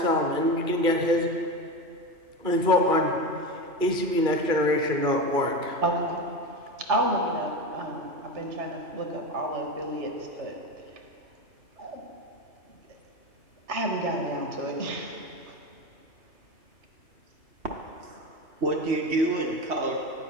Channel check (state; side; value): late; left; 2.4 ms